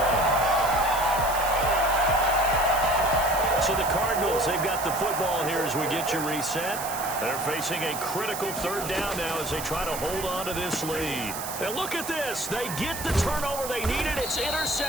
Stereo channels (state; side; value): noise; right; hiss, 8 dB below the sound